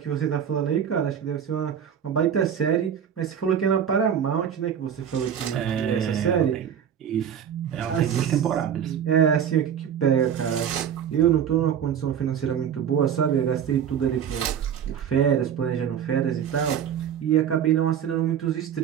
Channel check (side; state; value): left; quieter; 8.6 dB